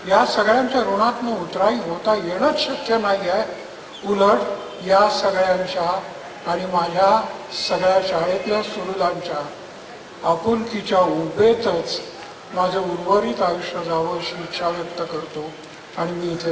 या सगळ्यांच्या ऋणातनं उतराई होता येणंच शक्य नाही आहे. उलट या सगळ्यांच्या आणि माझ्या सगळ्या शाळेतल्या सुहृदांच्या आपुलकीच्या उभेतच माझं उर्वरित आयुष्य जावं अशी इच्छा व्यक्त करतो आणि मी इथे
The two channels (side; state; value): both; identical; correlation 1.00